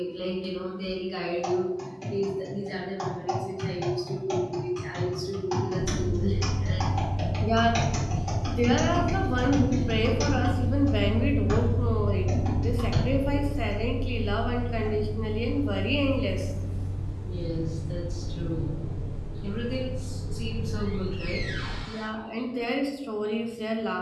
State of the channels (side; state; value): both; identical; correlation 1.00